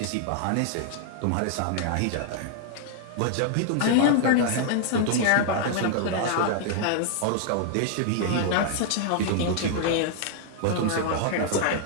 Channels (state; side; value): different; both; correlation -0.01